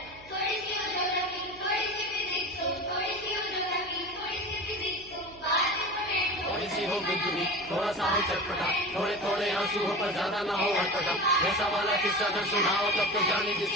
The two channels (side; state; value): right; noise; hum, 23 dB below the sound